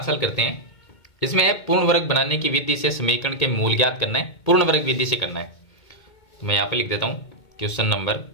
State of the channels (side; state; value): right; late; 2.2 ms